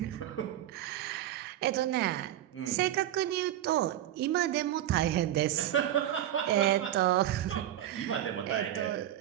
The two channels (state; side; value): quieter; left; 12.3 dB